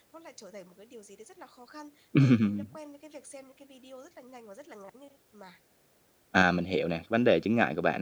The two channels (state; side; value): identical; both; correlation 1.00